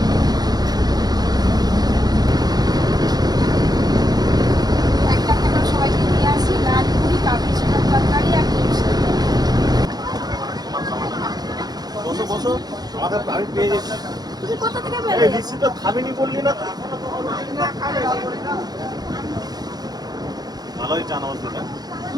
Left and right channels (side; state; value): left; late; 0.19 ms